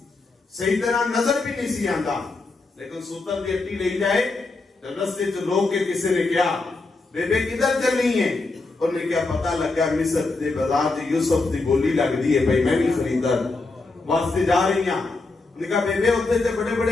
صحیح طرح نظر بھی نہیں سی آندا لیکن سوتر دی اٹی لے جائے تو رستے جو لوگ کے کسی نے کیا بیبے کدھر چلنی ہے انہوں نے کیا پتہ لگا مصر دے بازار جی یوسف دی بولی لگ دی ہے بھائی میں بھی خریدار واسطے جا رہی ہیں انہوں نے کہا بیبے ہوتے تھے بڑے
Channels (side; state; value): right; quieter; 3.5 dB